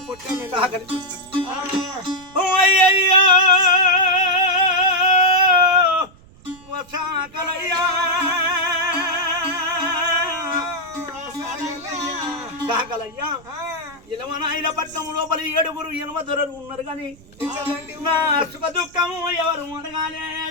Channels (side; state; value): right; noise; rumble, 24 dB below the sound